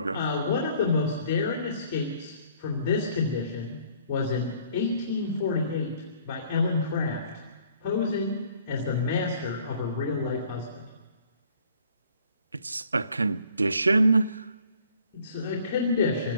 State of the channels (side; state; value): both; inverted; correlation -0.58